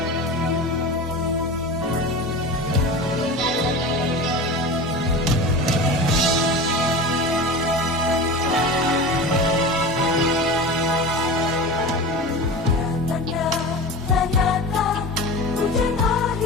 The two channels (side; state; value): both; normal; correlation 0.30